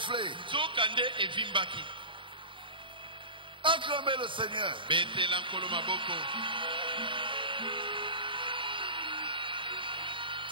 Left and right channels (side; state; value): left; late; 0.24 ms